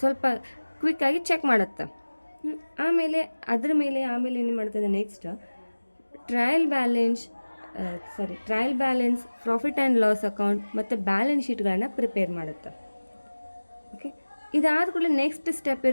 ಸ್ವಲ್ಪ ಕ್ವಿಕ್ಕಾಗಿ ಚೆಕ್ ಮಾಡುತ್ತೆ. ಆಮೇಲೆ ಅದ್ರ ಮೇಲೆ ಏನು ಮಾಡ್ತದೆ, next trial balance, profit and loss account ಮತ್ತು ಬ್ಯಾಲೆನ್ಸ್ ಶೀಟ್ಗಳನ್ನು ಪ್ರಿಪೇರ್ ಮಾಡುತ್ತೆ. ಓಕೆ, ಇದಾದ ಕೂಡಲೇ ನೆಕ್ಸ್ಟ್ ಸ್ಟೆಪ್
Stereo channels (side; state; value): both; inverted; correlation -1.00